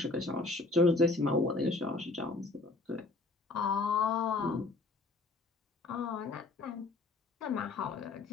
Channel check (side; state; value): right; quieter; 3.4 dB